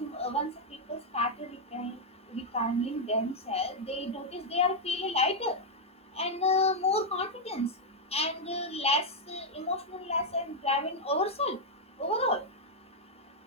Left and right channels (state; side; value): normal; both; correlation -0.01